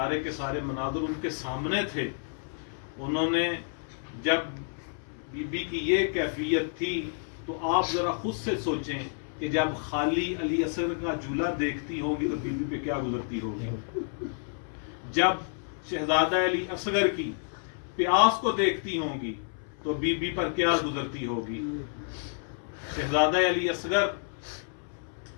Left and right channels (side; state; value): right; silent; 58 dB below the other